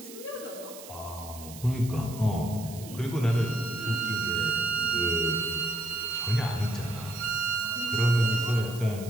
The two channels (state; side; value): noise; right; hiss, 16 dB below the sound